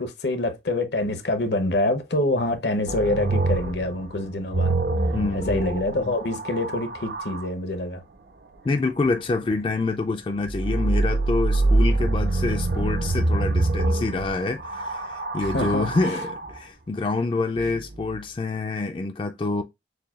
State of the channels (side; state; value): both; normal; correlation 0.59